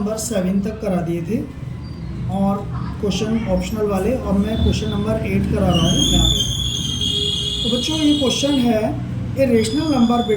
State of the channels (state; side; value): identical; both; correlation 1.00